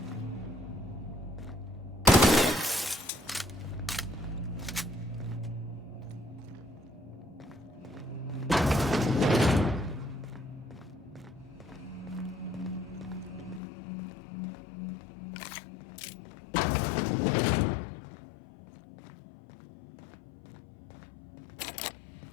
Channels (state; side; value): drops out; right; at 13.6 s